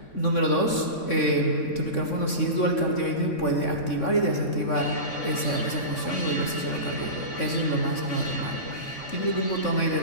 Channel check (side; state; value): right; late; 3.6 ms